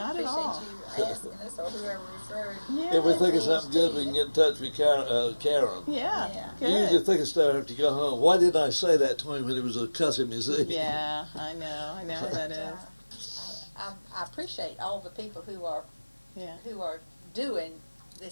at all. Appreciate you asking us or whoever referred. Yeah. If we think of Please something good, we can get in touch with Karen. Yeah. Yeah. Good. You usually think of stuff after you go home. Why didn't I say that to him when he was cussing me? See? Yeah, I know how that is. I appreciate all the people who are Yeah. doing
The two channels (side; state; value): both; inverted; correlation -1.00